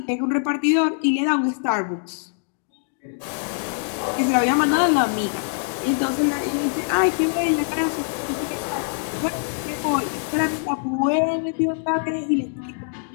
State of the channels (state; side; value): silent; right; digital silence